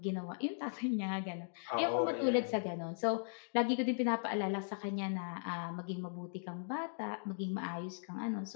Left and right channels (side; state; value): right; silent; digital silence